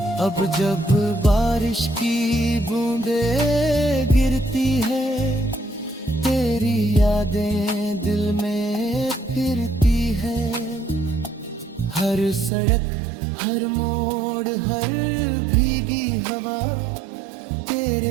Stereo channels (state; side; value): drops out; left; at 12.5 s